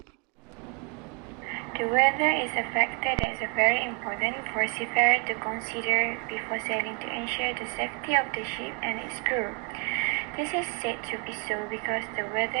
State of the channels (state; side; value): quieter; left; 33.7 dB